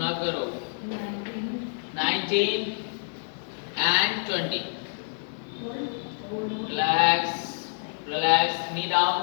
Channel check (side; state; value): right; silent; digital silence